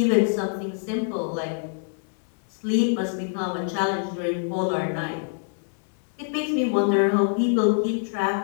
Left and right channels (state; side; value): silent; right; digital silence